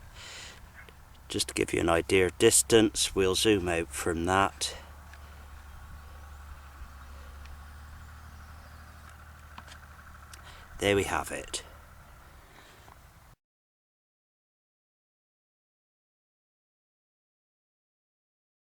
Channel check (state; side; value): identical; both; correlation 1.00